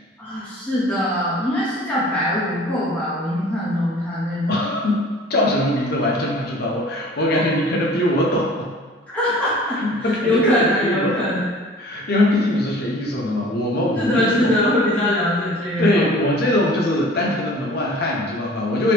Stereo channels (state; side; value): normal; both; correlation 0.47